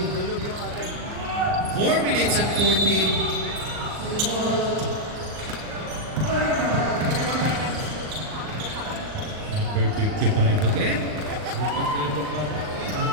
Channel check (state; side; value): late; left; 39 ms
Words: 4 minutes and 40. Number 55 again.